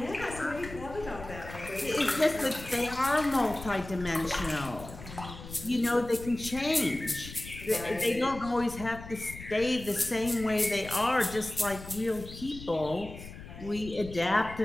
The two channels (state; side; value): noise; left; rumble, 13 dB below the sound